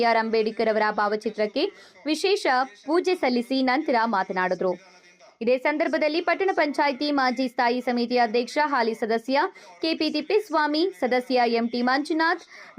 ಅಂಬೇಡ್ಕರ್ ಅವರ ಭಾವಚಿತ್ರಕ್ಕೆ ವಿಶೇಷ ಪೂಜೆ ಸಲ್ಲಿಸಿ ನಂತರ ಮಾತನಾಡಿದರು. ಇದೇ ಸಂದರ್ಭದಲ್ಲಿ ಪಟ್ಟಣ ಪಂಚಾಯಿತಿ ಮಾಜಿ ಸ್ಥಾಯಿ ಸಮಿತಿ ಅಧ್ಯಕ್ಷ ಹಾಲಿ ಸದಸ್ಯ ಕೆಪಿ ತಿಪ್ಪೇಸ್ವಾಮಿ, ಸದಸ್ಯ ಎಂಟಿ ಮಂಜುನಾಥ್,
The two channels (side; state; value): both; identical; correlation 1.00